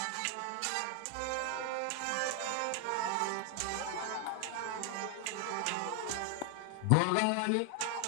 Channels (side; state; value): both; different; correlation 0.00